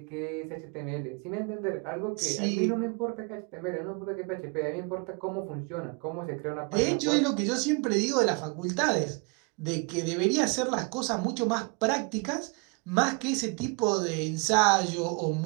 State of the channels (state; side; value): quieter; left; 32.8 dB